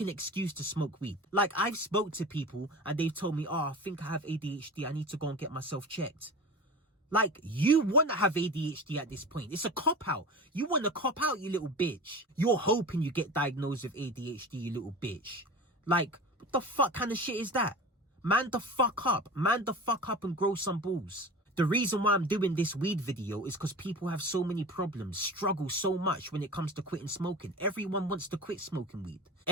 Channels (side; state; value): both; normal; correlation 0.33